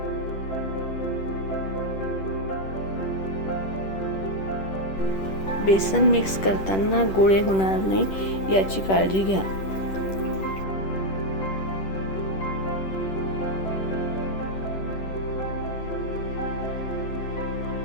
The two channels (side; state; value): right; late; 10 ms